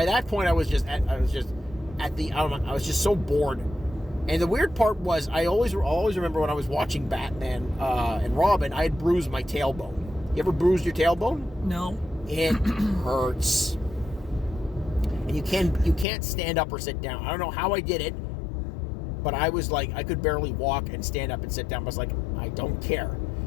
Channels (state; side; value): drops out; right; at 16.1 s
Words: that point, I was just so bored. And the weird part was, I always remember when I was watching Batman and Robin, I had bruised my tailbone. You ever bruised your tailbone? No. It hurts. And you can't stand up or sit down. I don't know how I did it, but I was I could barely walk and stand up and sit down. I was like, I don't care.